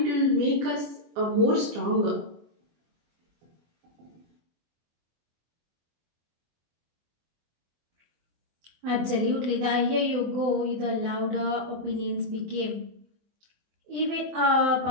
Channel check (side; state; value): left; late; 24 ms